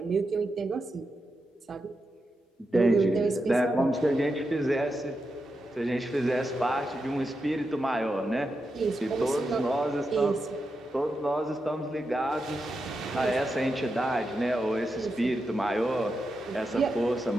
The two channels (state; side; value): normal; both; correlation 0.87